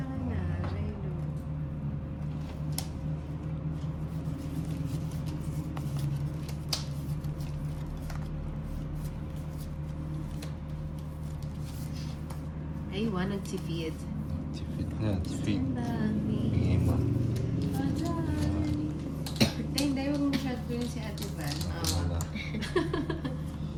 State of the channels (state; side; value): identical; both; correlation 1.00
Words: ka na, Jeno? Ay, nagtipid. Tipid na, tipid. Ang dami. Bigay mo. Hindi, huwag mo masyado ko yun si Ate Van. Wala.